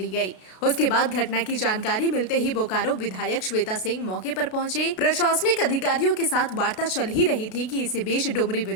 गई। उसके बाद घटना की जानकारी मिलते ही बोकारो विधायक श्वेता सिंह मौके पर पहुंचे। प्रशासनिक अधिकारियों के साथ वार्ता चल ही रही थी कि इसी बीच डुमरी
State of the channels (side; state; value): right; late; 32 ms